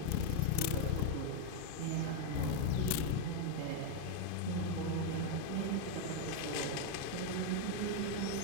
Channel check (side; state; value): both; different; correlation 0.01